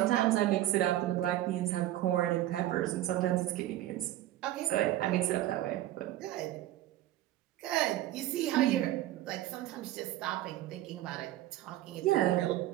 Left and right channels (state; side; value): quieter; left; 14.2 dB